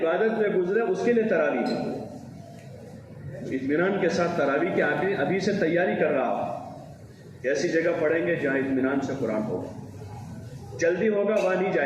میں گزرے اس کے لیے تراویح ہے. اطمینان کے ساتھ تراویح کے آگے ابھی سے تیاری کر رہا ہو. ایسی جگہ پڑھیں گے جہاں اطمینان سے قرآن ہوگا. جلدی ہوگا وہاں نہیں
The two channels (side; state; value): both; identical; correlation 1.00